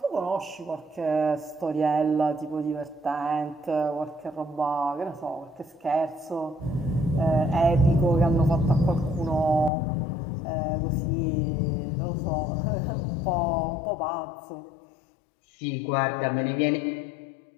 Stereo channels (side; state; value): right; drops out; at 9.7 s